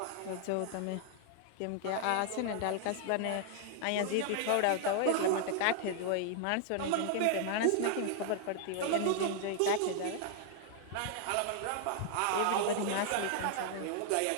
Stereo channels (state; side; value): different; both; correlation 0.00